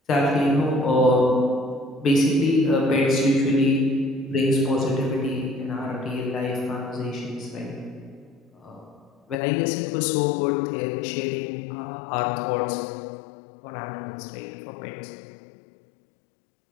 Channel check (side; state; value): right; drops out; at 9.3 s